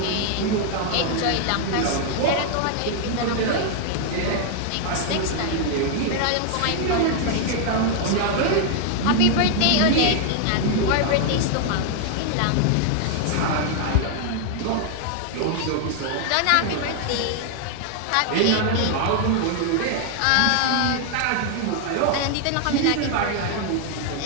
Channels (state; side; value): different; both; correlation 0.00